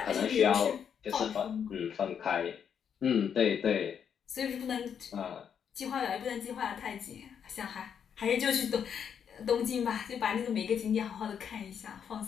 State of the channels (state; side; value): quieter; right; 7.8 dB